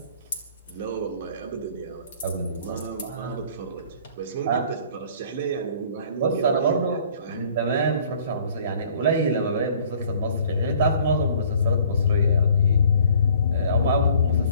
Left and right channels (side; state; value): both; inverted; correlation -0.55